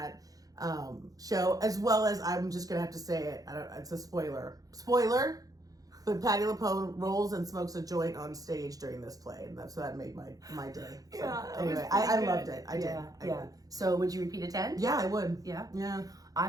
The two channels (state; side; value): late; left; 0.17 ms